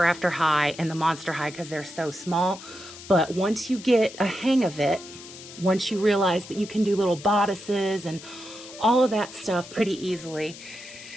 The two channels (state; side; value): noise; left; hiss, 16 dB below the sound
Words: After High and the Monster High because they're so small, but once you get a hang of it, once you realize that you can do little bodices and all of that stuff pretty easily,